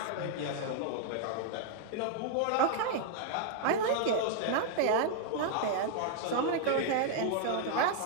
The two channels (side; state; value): both; different; correlation 0.00